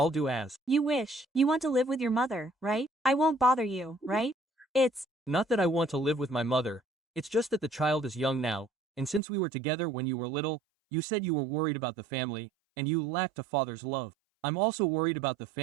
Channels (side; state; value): left; drops out; at 9.2 s